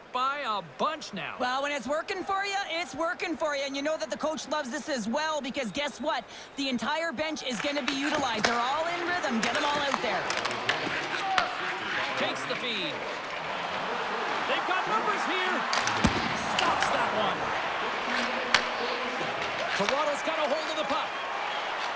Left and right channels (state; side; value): identical; both; correlation 1.00